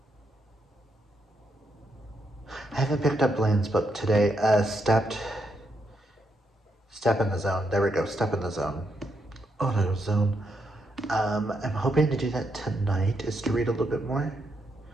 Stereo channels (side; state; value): both; normal; correlation 0.79